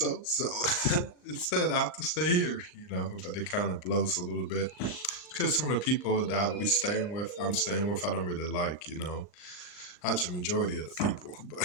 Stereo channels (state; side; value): late; right; 38 ms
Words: So instead, I have to stay here. But it kind of blows a little bit because some of the people that I'm staying with, I don't really like. Not the majority of the people,